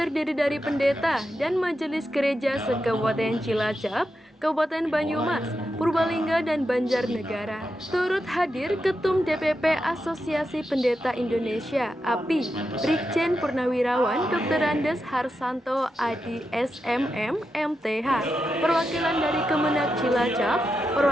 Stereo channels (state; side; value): normal; both; correlation 0.87